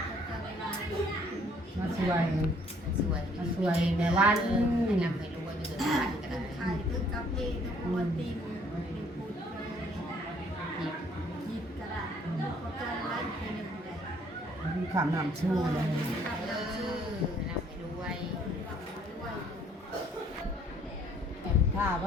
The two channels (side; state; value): both; normal; correlation 0.61